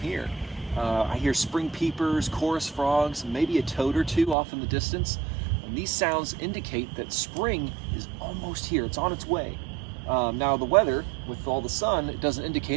I hear spring peepers, chorus frogs, maybe a toad or two off in the distance. And these sounds indicate that spring is almost here. It's on its way. Now the weather, with all the sun, it doesn't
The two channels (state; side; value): drops out; left; at 4.4 s